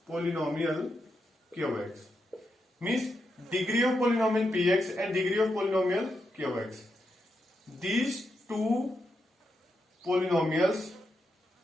polynomial qx, means degree of polynomial px and degree of polynomial qx. These two polynomials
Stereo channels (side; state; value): both; normal; correlation 0.84